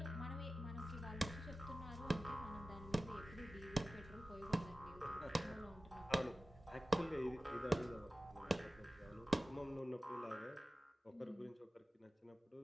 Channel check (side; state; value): both; normal; correlation 0.96